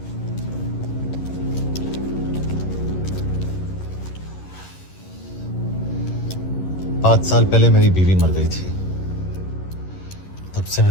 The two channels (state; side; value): late; right; 11 ms